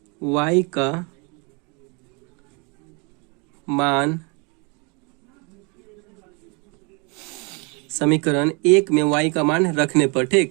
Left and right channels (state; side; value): quieter; left; 31.8 dB